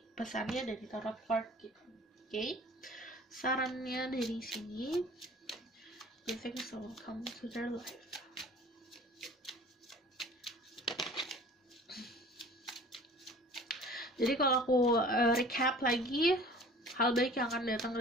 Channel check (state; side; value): normal; both; correlation 0.46